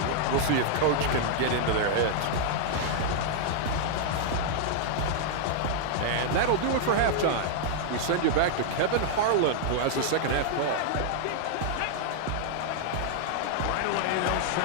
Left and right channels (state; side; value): different; both; correlation -0.01